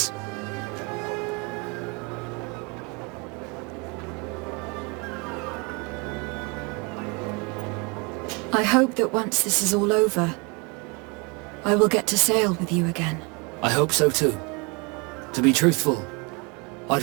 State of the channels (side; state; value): left; quieter; 30.1 dB